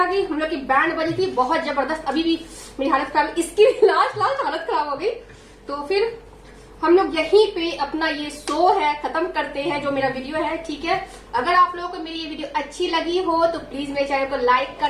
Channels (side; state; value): both; identical; correlation 1.00